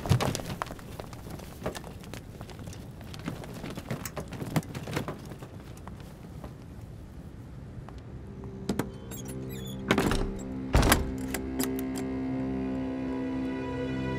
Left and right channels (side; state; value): both; identical; correlation 1.00